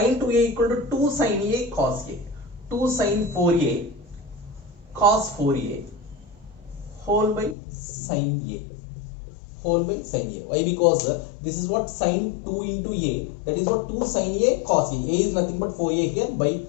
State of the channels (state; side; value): drops out; right; at 7.6 s